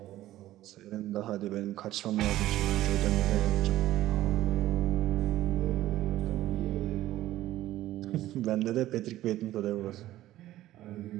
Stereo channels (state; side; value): quieter; left; 14.7 dB